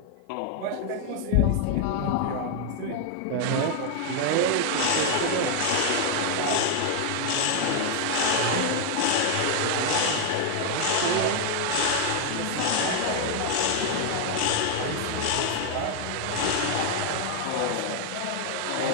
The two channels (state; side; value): different; both; correlation 0.00